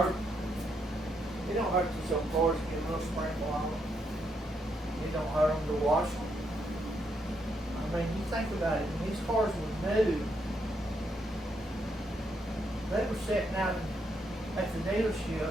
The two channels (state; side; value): normal; both; correlation 0.77